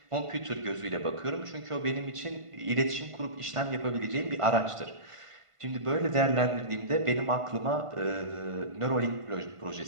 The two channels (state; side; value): late; left; 1.5 ms